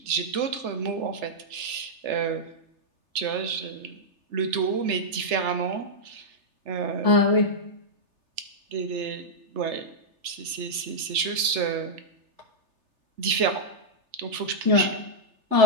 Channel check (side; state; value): left; late; 3.3 ms